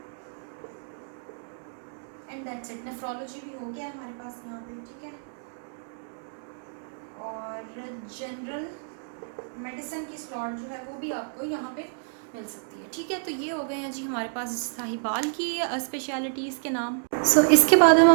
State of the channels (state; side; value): silent; left; digital silence